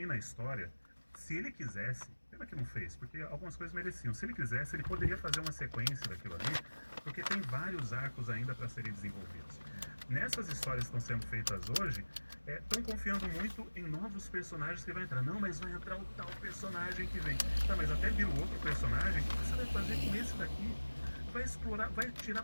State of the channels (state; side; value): inverted; both; correlation -1.00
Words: a história, se ele quisesse, pena que não fez, porque algumas coisas mereciam, se ele quisesse, ele poderia fazer uma sequência daquilo ali, porque tem vários arcos ainda para serem desenvolvidos. Nessas histórias que estão sendo feitas hoje, estão confiando muito em novos personagens que vai entrar. Não, mas vai entrar o tal personagem que vem. Tá, mas até vira outro personagem, o que você vai fazer com esse daqui? Vai explorar, vai